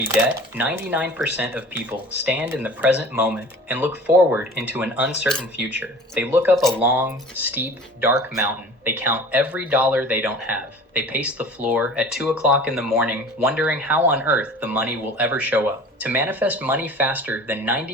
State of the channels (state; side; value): normal; both; correlation 0.42